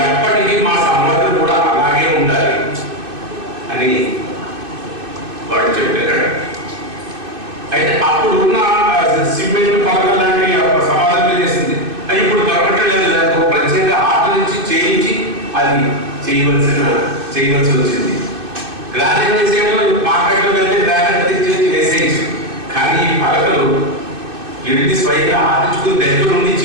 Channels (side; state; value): left; late; 2.6 ms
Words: ఎప్పటికీ మా సమాజం కూడా అలాగే ఉండాలి అని వాడు చెప్పారు. అయితే అప్పుడు ఉన్న సిమెంట్ పలకలు లాంటి సమాధానం చేసింది, అది ఇప్పుడు దొరకట్లేదు. దానికి ప్రత్యేక ఆట నుంచి చేయించి అది చేయవలసి వచ్చింది. గ్రానైట్ వేసేయడం మార్కెట్లో వెళ్తే గ్రానైట్ తెచ్చి వేసేయచ్చు. కానీ ఈ పలకలు వెళ్ళి స్వయంగా ఆడించుకుని దగ్గర నుండి